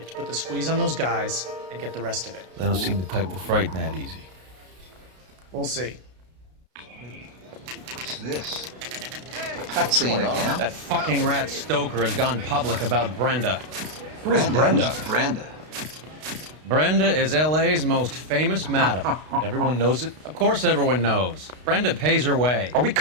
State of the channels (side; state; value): left; late; 32 ms